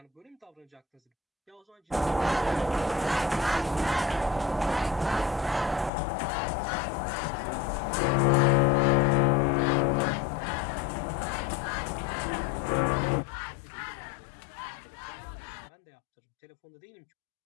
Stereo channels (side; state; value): right; drops out; at 5.9 s